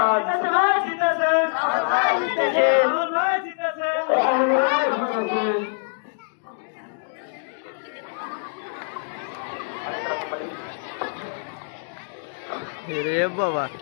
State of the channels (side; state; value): right; silent; digital silence